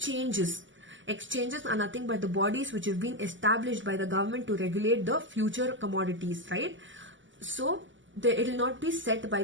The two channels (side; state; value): left; late; 0.55 ms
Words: are nothing but the bodies which have been established by the government to regulate the future commodities, right? So it will not be set by